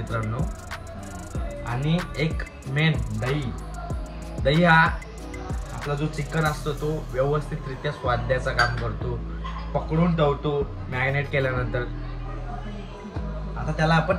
आणि एक मेन दही. दही हा आपला जो चिकन असतो तो व्यवस्थितरित्या स्वाद द्यायचं काम करतो, पकडून ठेवतो मॅरिनेट केल्यानंतर. आता त्याला आपण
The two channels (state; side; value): identical; both; correlation 1.00